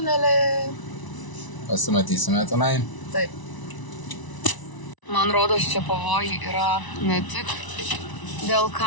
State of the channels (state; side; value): late; right; 1.0 ms